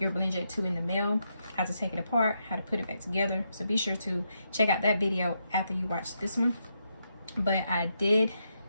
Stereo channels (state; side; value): inverted; both; correlation -0.81